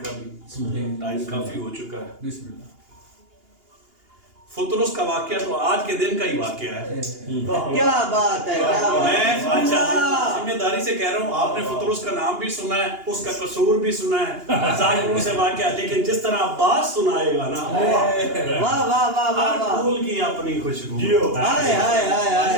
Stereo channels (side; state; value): left; late; 2.8 ms